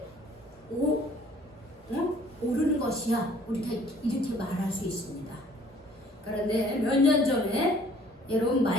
오르는 것이야. 우리가 이렇게 말할 수 있습니다. 그런데 몇 년 전에 여러분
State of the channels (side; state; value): both; normal; correlation 0.56